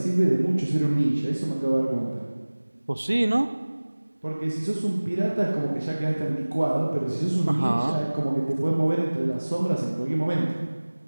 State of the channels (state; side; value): inverted; both; correlation -1.00